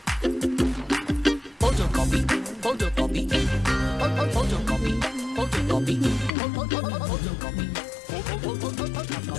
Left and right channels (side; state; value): right; drops out; at 6.3 s